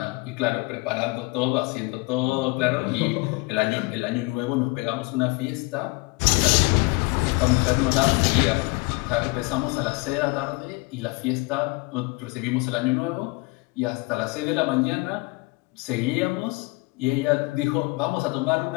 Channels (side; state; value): right; quieter; 25.8 dB